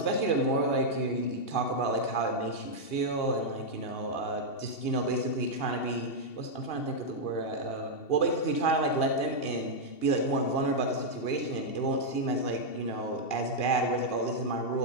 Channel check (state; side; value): late; right; 2.7 ms